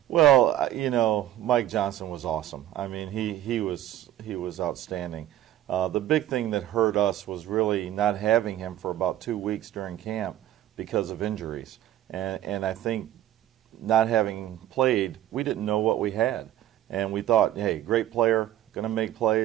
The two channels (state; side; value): quieter; left; 12.9 dB